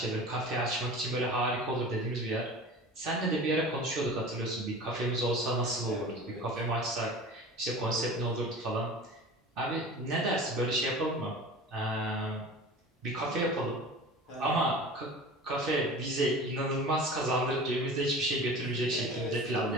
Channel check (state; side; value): normal; both; correlation 0.37